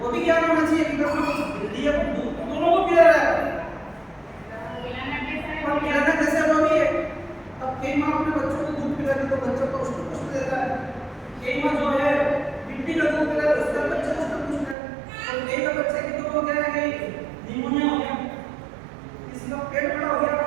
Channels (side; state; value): left; drops out; at 14.8 s